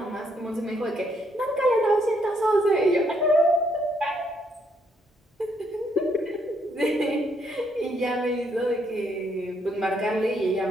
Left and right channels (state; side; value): normal; both; correlation 0.73